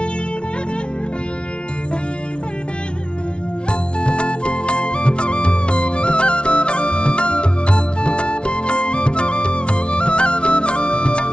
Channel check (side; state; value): right; late; 0.058 ms